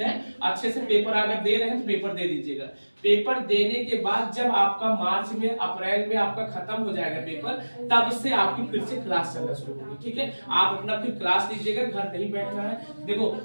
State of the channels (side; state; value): both; inverted; correlation -1.00